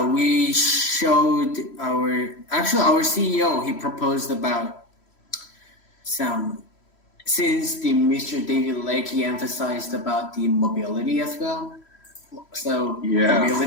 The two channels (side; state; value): right; late; 3.1 ms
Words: showed our CEO, he proposed about since the Mr. David Lake, he emphasized about the mobility as well. So